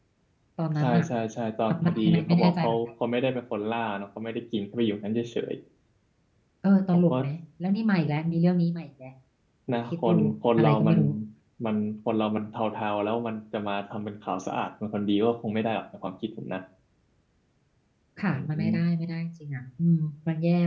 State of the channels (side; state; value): both; identical; correlation 1.00